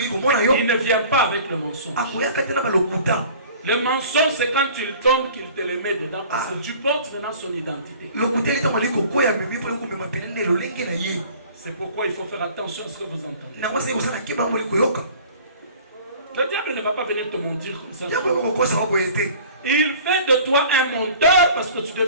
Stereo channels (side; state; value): both; inverted; correlation -0.47